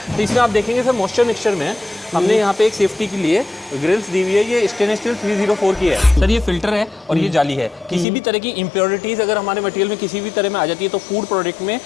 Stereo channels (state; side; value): drops out; right; at 8.1 s